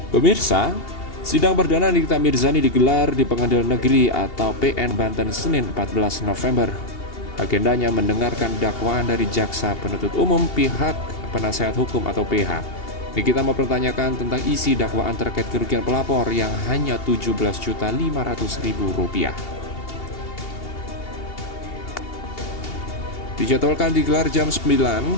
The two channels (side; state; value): right; late; 2.8 ms